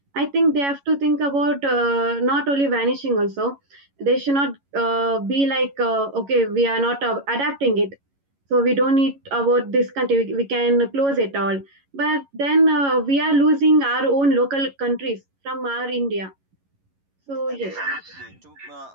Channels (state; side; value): late; left; 11 ms